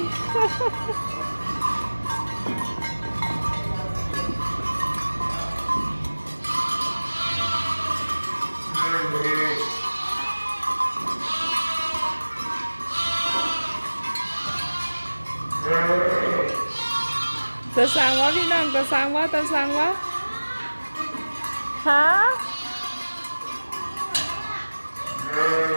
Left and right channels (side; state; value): both; inverted; correlation -1.00